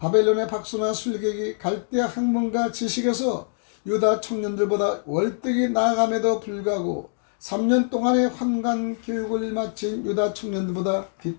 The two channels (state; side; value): silent; right; digital silence